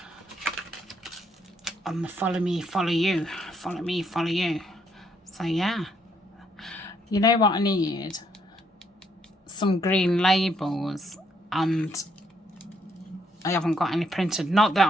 follow me, follow you. Follow me, follow you. So, yeah. You know what I need? Some green labels. And I haven't got any printed. Not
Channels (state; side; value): normal; both; correlation 0.72